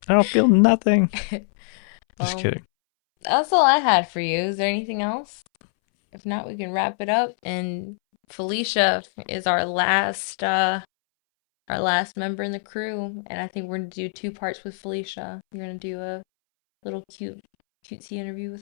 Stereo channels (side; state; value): right; silent; 63 dB below the other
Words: don't feel nothing. Just Well, kidding. that's all I had for you. Is there anything else? If not, we can wrap it up. And Felicia is our last member in the crew, and I think we're gonna do two parts with Felicia. You're gonna do a little cutesy interview with